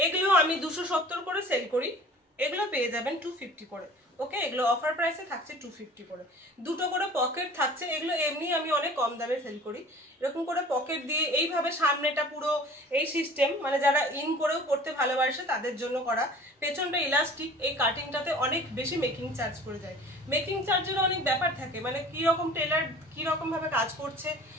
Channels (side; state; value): both; normal; correlation 0.45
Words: আমি 270 করে সেল করি, এগুলো পেয়ে যাবেন 250 করে। ওকে, এগুলো অফার প্রাইসে থাকছে 250 করে, দুটো করে পকেট থাকছে। এগুলো এমনি আমি অনেক কম দামে সেল করি, এরকম করে পকেট দিয়ে এইভাবে সামনেটা পুরো এই সিস্টেম, মানে যারা ইন করেও পড়তে ভালোবাসে তাদের জন্য করা। পেছনটা ইলাস্টিক, এই কাটিংটাতে অনেক বেশি মেকিং চার্জ করে যায়, মেকিং চার্জেরও অনেক ব্যাপার থাকে, মানে কীরকম টেলার কীরকম ভাবে কাজ করছে